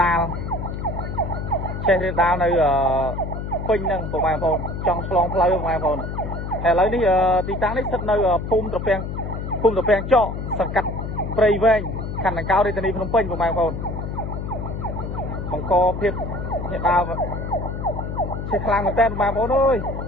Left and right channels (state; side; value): noise; left; hum, 5 dB below the sound